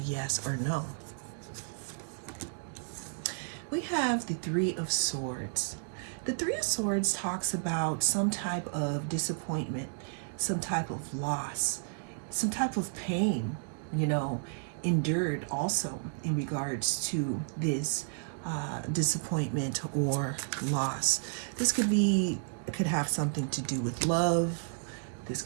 yes or no. We have the Three of Swords. The Three of Swords talks about some type of disappointment, some type of loss, some type of pain, endured also in regards to this disappointment or loss. This could have something to do with love. This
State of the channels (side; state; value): left; silent; digital silence